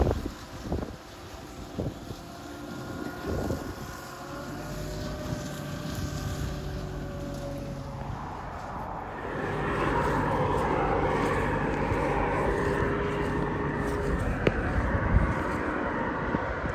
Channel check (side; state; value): both; identical; correlation 1.00